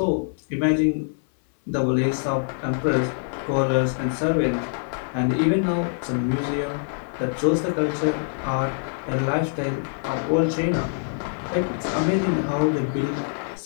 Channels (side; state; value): right; silent; 59 dB below the other